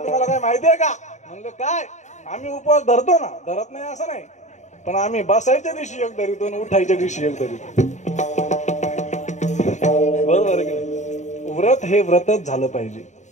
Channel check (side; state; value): right; late; 0.34 ms